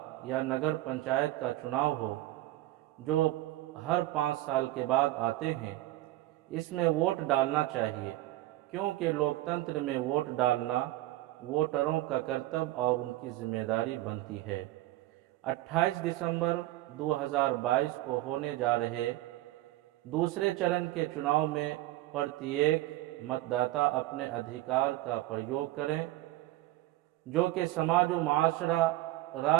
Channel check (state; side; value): quieter; left; 16.7 dB